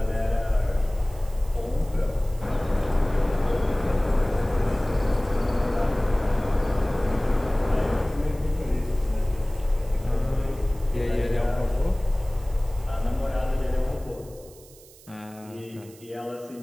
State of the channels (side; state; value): right; noise; hiss, 23 dB below the sound